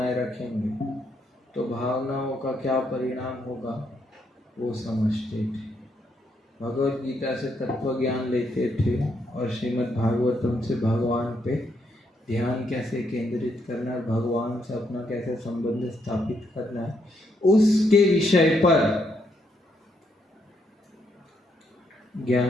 रखेंगे तो भावनाओं का क्या परिणाम होगा वो समझते थे। भगवत गीता से तत्व ज्ञान लेते थे और श्रीमद् भागवतम से भगवान पे ध्यान कैसे केंद्रित करना है, भगवान से अपना कैसे संबंध स्थापित करना है, उसके विषय पर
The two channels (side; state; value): both; normal; correlation 0.76